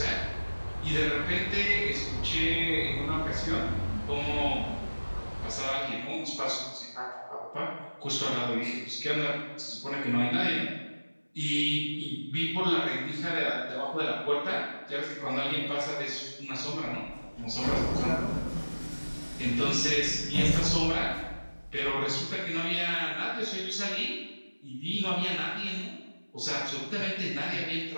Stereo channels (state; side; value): inverted; both; correlation -1.00